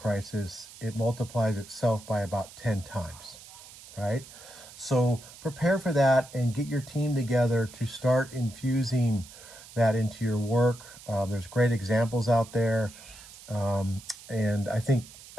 it multiplies itself by about 10 times, right? So prepare for that and get your team together to start infusing that into your work. There's great examples out there, and I think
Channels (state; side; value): noise; right; hiss, 18 dB below the sound